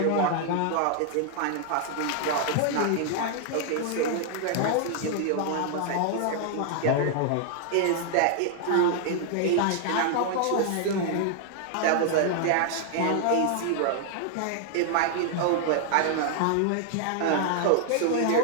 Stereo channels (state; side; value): different; both; correlation 0.00